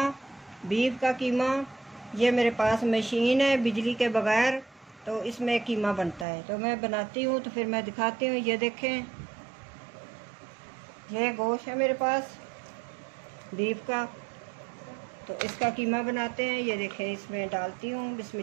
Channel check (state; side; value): drops out; left; at 6.2 s